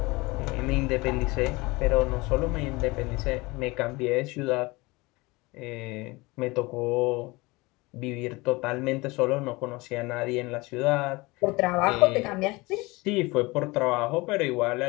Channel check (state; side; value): quieter; right; 23.4 dB